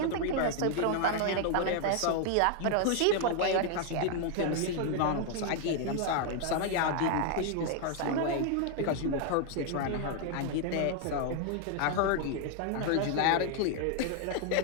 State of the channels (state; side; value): different; both; correlation 0.00